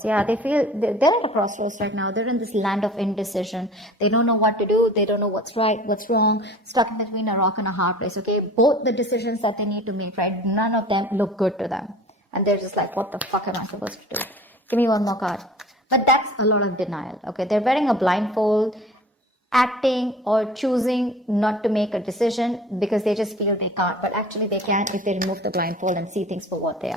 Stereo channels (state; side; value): normal; both; correlation 0.43